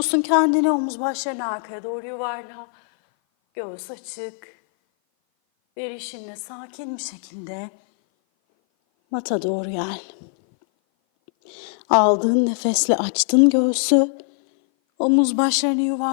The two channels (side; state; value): right; silent; 57 dB below the other